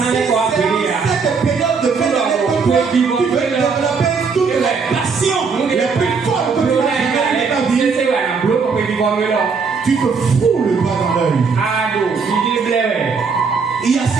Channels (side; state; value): left; quieter; 5.2 dB